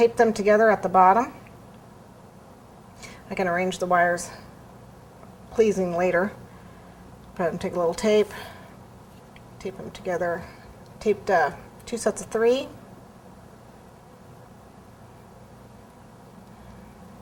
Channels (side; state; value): both; identical; correlation 1.00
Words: them together at the bottom. I can arrange the wires pleasing later, but I'm going to take a little tape, tape them together, taped 2 sets of 3.